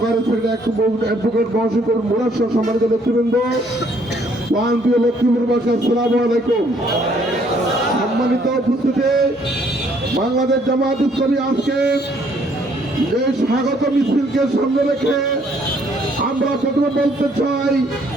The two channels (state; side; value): normal; both; correlation 0.65